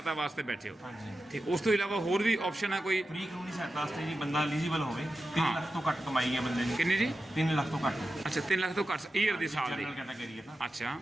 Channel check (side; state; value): both; normal; correlation 0.92